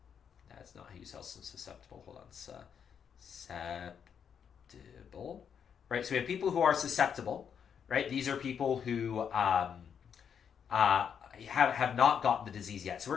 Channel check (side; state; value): right; quieter; 7.6 dB